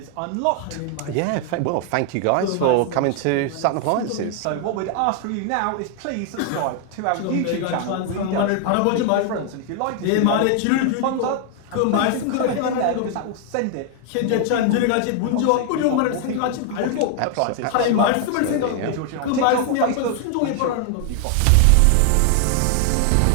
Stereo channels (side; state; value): both; different; correlation 0.00